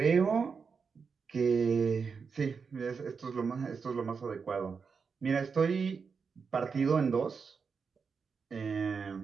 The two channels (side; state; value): left; quieter; 5.5 dB